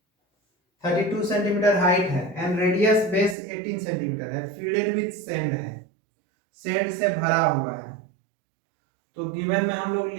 32 सेंटीमीटर हाइट है एंड रेडियस बेस 18 सेंटीमीटर है, फील्डेड विथ सैंड है, सैंड से भरा हुआ है। तो गिवन में हम लोग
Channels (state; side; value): drops out; left; at 3.4 s